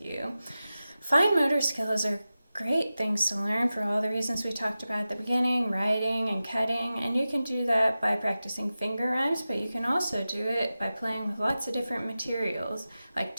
you. Fine motor skills are great things to learn for all the reasons we talked about at the beginning, writing and cutting, and you can do that by practicing finger rhymes, but you can also do it by playing with lots of different materials, like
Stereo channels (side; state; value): both; inverted; correlation -0.94